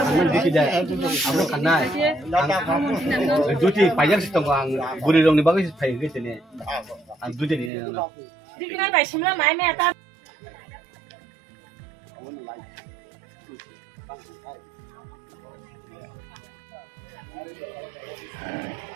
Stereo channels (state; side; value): drops out; left; at 7.7 s